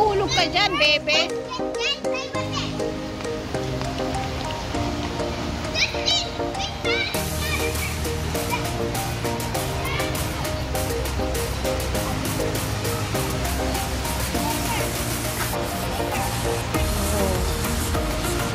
ka dyan, bebe.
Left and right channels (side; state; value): both; identical; correlation 1.00